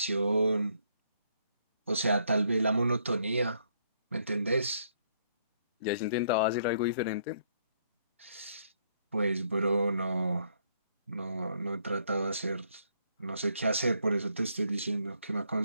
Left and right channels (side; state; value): both; inverted; correlation -0.70